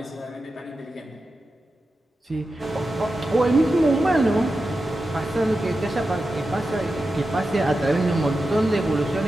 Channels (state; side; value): normal; both; correlation 0.91